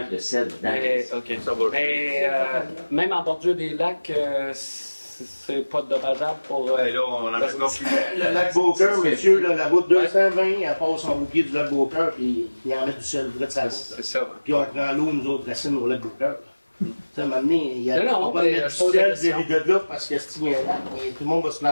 de sel dedans. Mais, OK. Mais même en bordure des lacs, c'est pas dommageable pour... Là, on en a encore plus. Le lac Beaucœur, monsieur, là, la route 220, elle passe au pied du lac Beaucœur, puis il en met du sel près de sa route. C'est ça. Puis on prend l'eau, nous autres, racines au lac Beaucœur. Tu sais, à un moment donné, il y a Non, on va mais mettre je du pose la sel question. de là parce que s'il y a un lac, tout le monde va se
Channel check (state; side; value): inverted; both; correlation -1.00